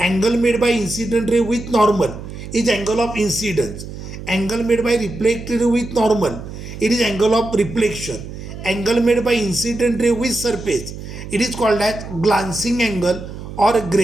Angle made bye incident ray with normal is angle of incidence. Angle made by reflected ray with normal, it is angle of reflection. Angle made by incident ray with surface, it is called as glancing angle or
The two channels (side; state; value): right; noise; hum, 11 dB below the sound